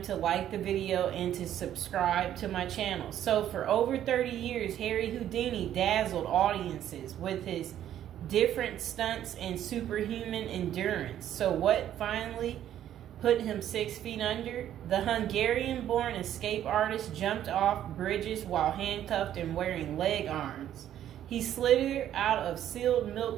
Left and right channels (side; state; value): left; quieter; 11.2 dB